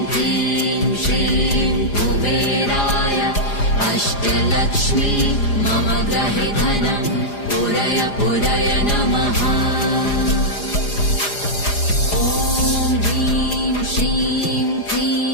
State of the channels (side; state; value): right; late; 4.9 ms